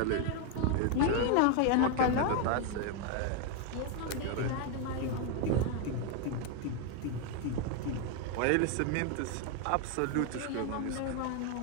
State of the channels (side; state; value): both; different; correlation 0.01